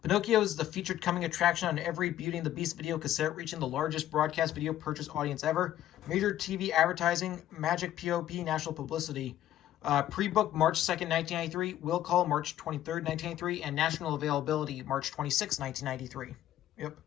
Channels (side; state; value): right; quieter; 12.6 dB